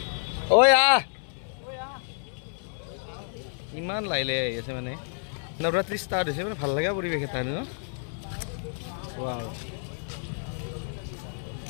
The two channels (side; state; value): right; silent; 59 dB below the other